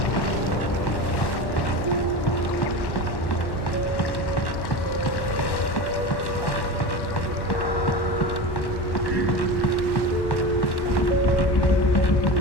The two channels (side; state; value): right; late; 1.1 ms